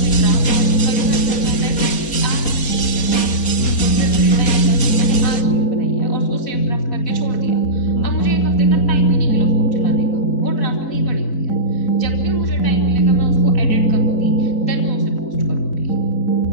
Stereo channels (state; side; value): late; right; 4.3 ms